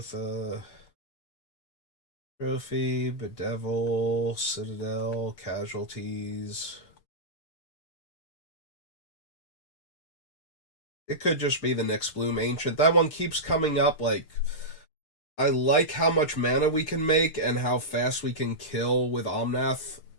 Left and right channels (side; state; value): right; late; 6.7 ms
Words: Trophy, Bedevil, Citadel, Casualties. It could just be the Nyx Bloom Ancient. That one keeps coming up. Like, I like how much mana we can make and how fast we can kill with Omnath